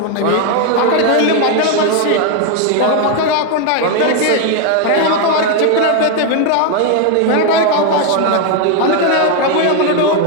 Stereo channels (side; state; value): both; different; correlation 0.01